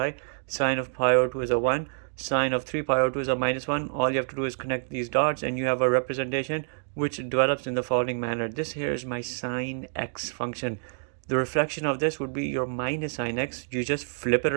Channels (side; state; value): left; silent; digital silence